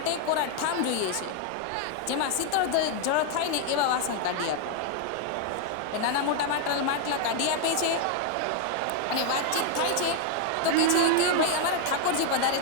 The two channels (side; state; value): both; different; correlation 0.00